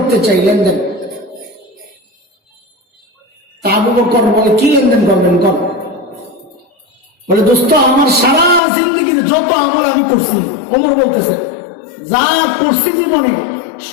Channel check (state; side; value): drops out; right; at 8.6 s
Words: চাই, লেনদেন। তা আবু বকর বলে, কি লেনদেন করবেন? কর। বলে, দোস্ত আমার সারা জিন্দগির যত আমল আমি করছি, ওমর বলতেছে, যা করছি জীবনে